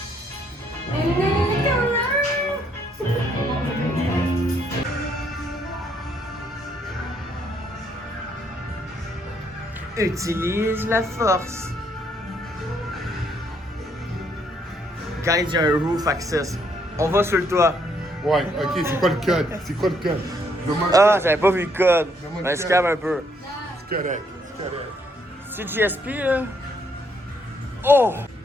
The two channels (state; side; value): normal; both; correlation 0.71